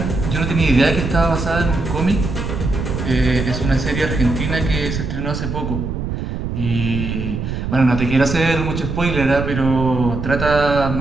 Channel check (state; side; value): noise; right; rumble, 4 dB below the sound